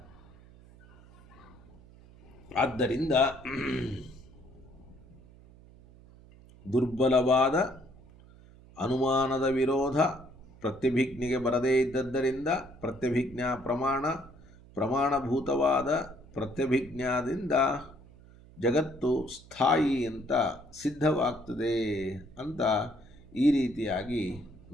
ಆದ್ದರಿಂದ ದುರ್ಬಲವಾದ ಅನುಮಾನದ ವಿರೋಧ ಪ್ರತ್ಯಭಿಜ್ಞೆಗೆ ಬರದೇ ಇದ್ದದ್ದರಿಂದ ಪ್ರತ್ಯಭಿಜ್ಞಾ ಪ್ರಮಾಣಭೂತವಾದ ಪ್ರತ್ಯಭಿಜ್ಞಾದಿಂದ ಜಗತ್ತು ಸ್ಥಾಯಿ ಅಂತ ಸಿದ್ಧವಾಗ್ತದೆ ಅಂತ ಈ ರೀತಿಯಾಗಿ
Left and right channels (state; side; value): noise; right; hum, 23 dB below the sound